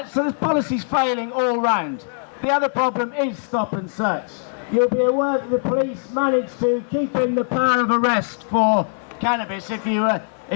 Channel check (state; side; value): silent; right; 60 dB below the other